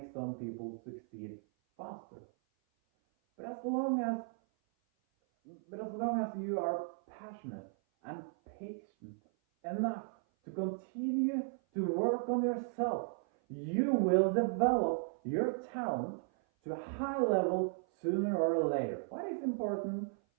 some people succeed faster. But as long as you are passionate and patient enough to continue to work on yourself, you will develop your talent to a high level sooner or later. What is important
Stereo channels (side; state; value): left; silent; 54 dB below the other